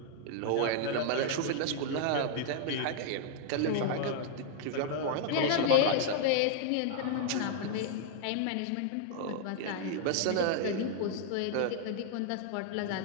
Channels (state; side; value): different; both; correlation -0.01